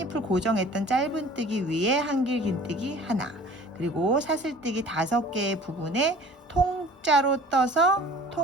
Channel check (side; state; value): both; normal; correlation 0.46